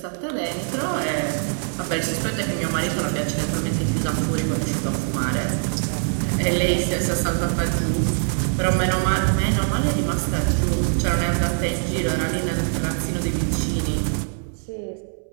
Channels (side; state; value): left; silent; 63 dB below the other